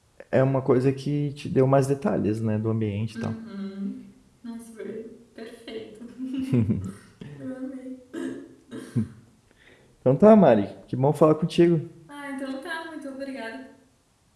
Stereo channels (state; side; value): identical; both; correlation 1.00